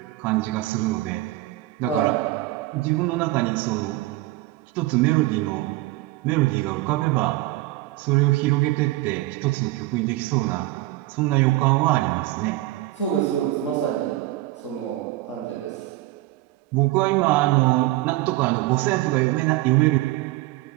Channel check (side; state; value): left; quieter; 17.4 dB